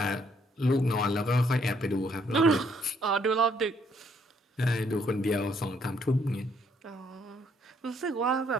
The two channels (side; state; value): both; normal; correlation 0.69